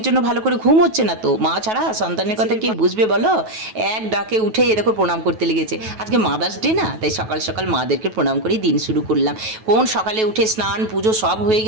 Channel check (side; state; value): left; late; 9.2 ms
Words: জন্য ভালো করে ঘুম হচ্ছে না তো, মা ছাড়া সন্তানের কথা কে বুঝবে বলো। এক ডাকে উঠে এ দেখো প্রণাম করতে লেগেছে। আজকে মাদার্স ডে না, তাই সকাল সকাল মাদেরকে প্রণাম করে দিন শুরু করলাম। কোন সকালে উঠে স্নান পুজো সব হয়ে